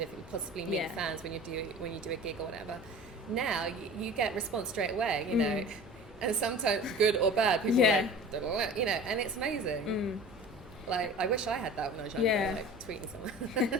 of possibly meet fans when you do a gig or whatever. Now you get response straight away, you know, and sometimes good or bad. People are like, you know, and it's amazing. Like, I wish I had that when I was younger, like tweeting someone.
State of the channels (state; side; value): normal; both; correlation 0.39